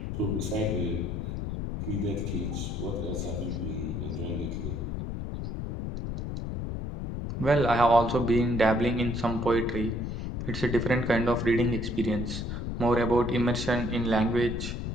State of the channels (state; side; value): noise; left; rumble, 4 dB below the sound